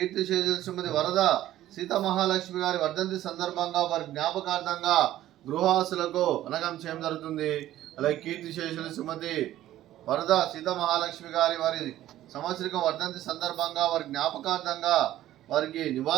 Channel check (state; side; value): quieter; left; 13.6 dB